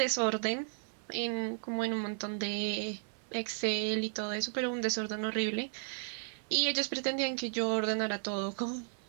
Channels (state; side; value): silent; left; 55 dB below the other